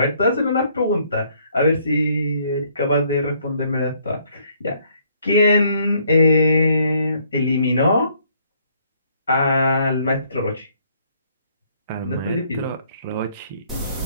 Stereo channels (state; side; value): inverted; both; correlation -0.66